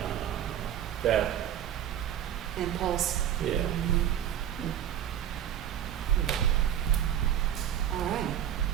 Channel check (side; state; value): left; quieter; 10.5 dB